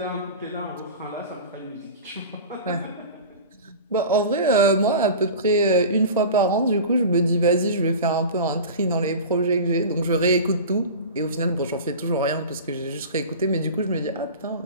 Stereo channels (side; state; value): both; inverted; correlation -0.33